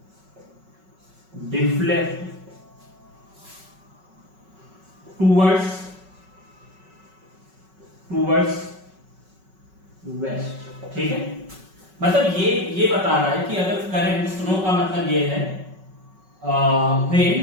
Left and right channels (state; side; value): late; left; 5.3 ms